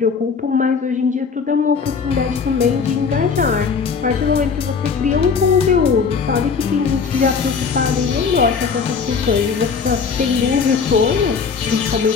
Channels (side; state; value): right; quieter; 5.6 dB